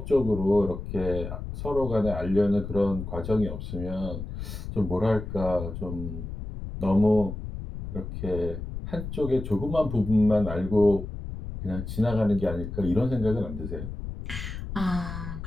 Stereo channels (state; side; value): noise; left; rumble, 7 dB below the sound